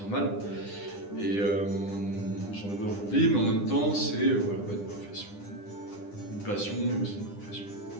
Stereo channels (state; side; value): late; right; 9.9 ms